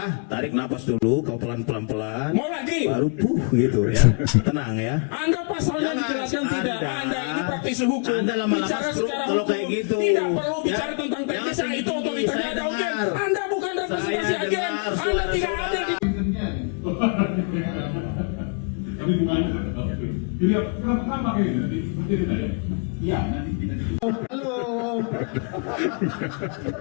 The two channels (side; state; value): right; quieter; 38.0 dB